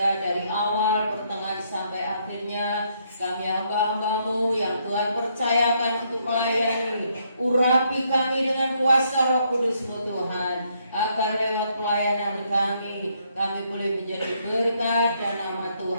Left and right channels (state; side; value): inverted; both; correlation -0.72